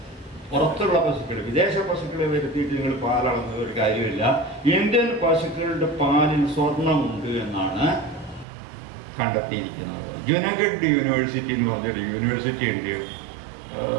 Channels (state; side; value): drops out; left; at 8.5 s